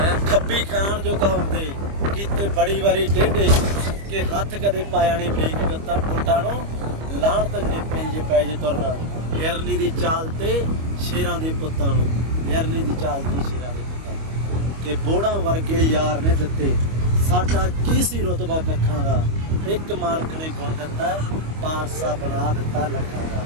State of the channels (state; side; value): late; left; 25 ms